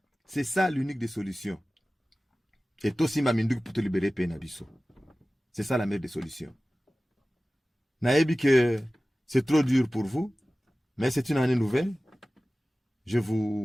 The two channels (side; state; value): both; normal; correlation 0.97